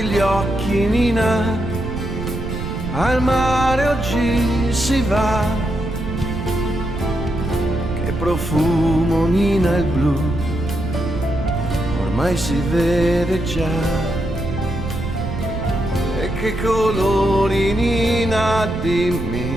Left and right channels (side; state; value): right; noise; rumble, 6 dB below the sound